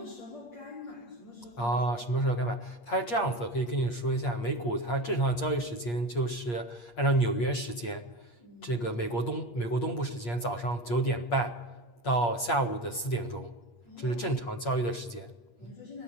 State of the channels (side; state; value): right; late; 8.5 ms